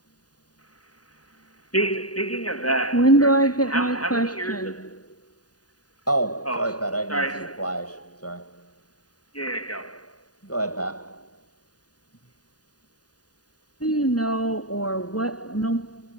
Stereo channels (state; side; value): late; right; 0.68 ms